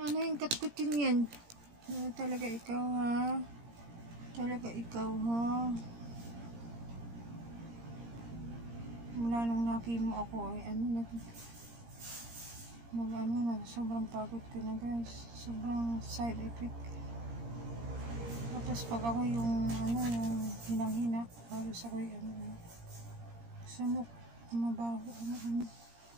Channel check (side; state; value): left; late; 17 ms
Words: Ano yung katkutin yan? Talaga ikaw, ha? Talaga ikaw, ha? Mula nung nakimo ako, ay sobrang pagod ko na, guys. Sobrang side effect. Tapos pag ako yung hinang-hina, halos ako yung sunok, mabaho,